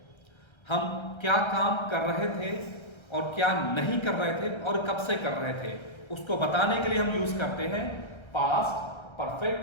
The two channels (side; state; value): right; late; 1.3 ms